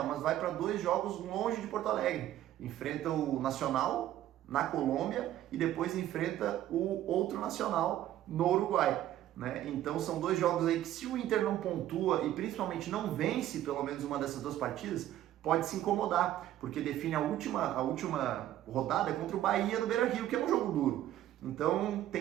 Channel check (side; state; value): left; quieter; 12.9 dB